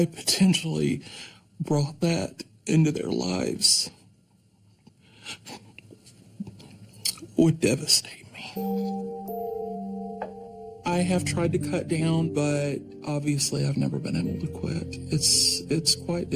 potentially brought that into their lives would devastate me. I have tried to cut down, but obviously I've never been able to quit. It's quite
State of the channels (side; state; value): both; identical; correlation 1.00